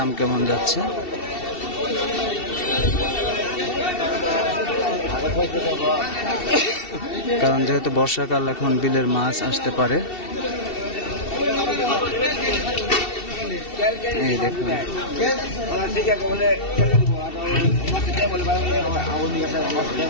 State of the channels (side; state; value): right; late; 2.7 ms